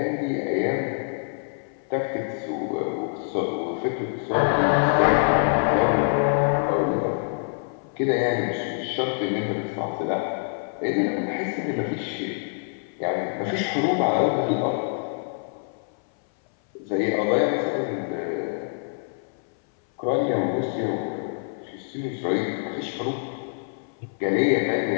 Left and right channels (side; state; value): right; silent; 60 dB below the other